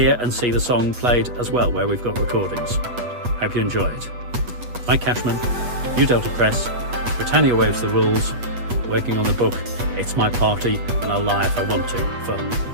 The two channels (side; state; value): left; late; 8.2 ms